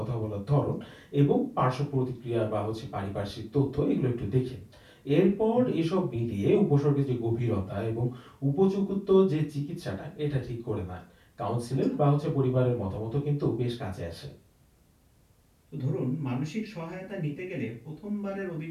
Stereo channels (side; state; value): both; identical; correlation 1.00